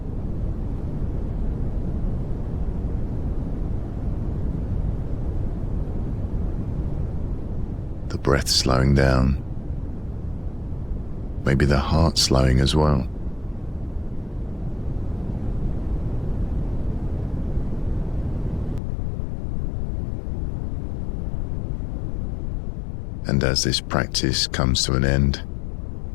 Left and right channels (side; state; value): right; drops out; at 18.8 s